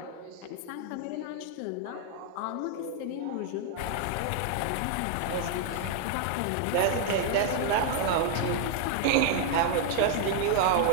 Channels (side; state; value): both; different; correlation 0.00